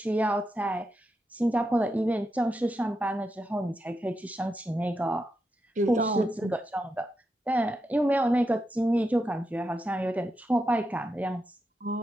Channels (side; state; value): both; normal; correlation 0.86